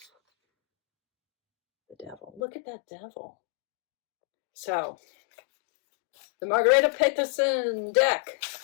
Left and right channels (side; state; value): right; drops out; at 2.4 s